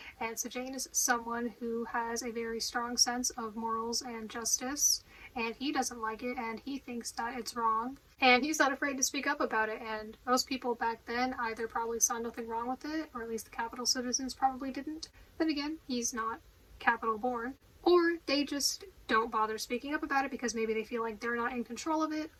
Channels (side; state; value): both; identical; correlation 1.00